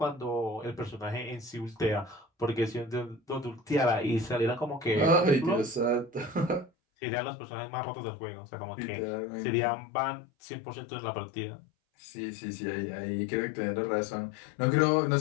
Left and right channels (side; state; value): right; drops out; at 6.7 s